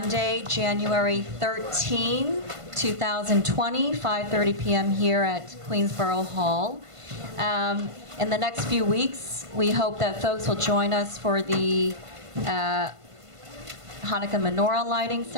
January 13, 2020, 5:30 p.m. here at Queensborough Hall. In the next few weeks, we hope that folks will join us for the Hanukkah menorah lighting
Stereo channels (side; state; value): left; late; 1.5 ms